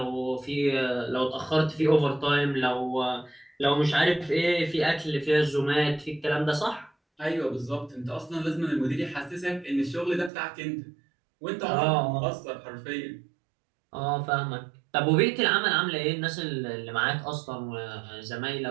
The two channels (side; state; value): left; drops out; at 10.3 s